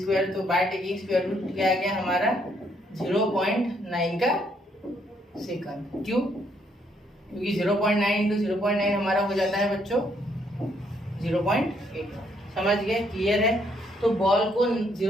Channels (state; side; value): normal; both; correlation 0.71